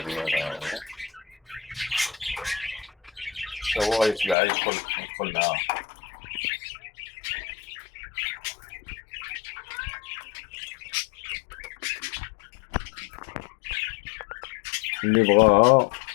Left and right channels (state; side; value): drops out; right; at 4.4 s